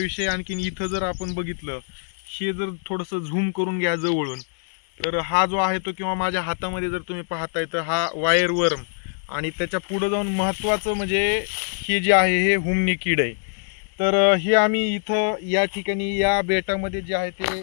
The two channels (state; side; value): silent; right; digital silence